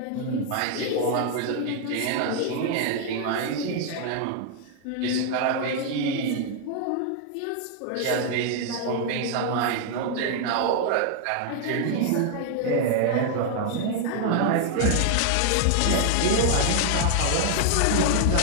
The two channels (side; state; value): both; different; correlation 0.00